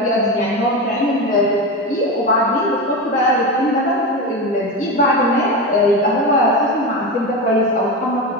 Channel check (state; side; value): normal; both; correlation 0.19